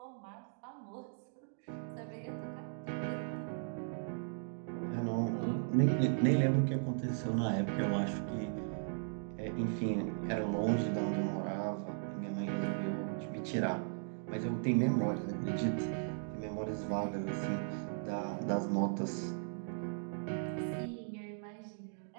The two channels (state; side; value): silent; left; digital silence